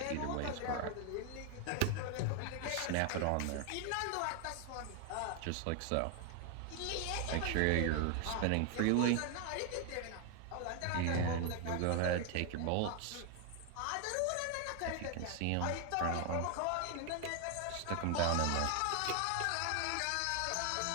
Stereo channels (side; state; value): both; different; correlation 0.00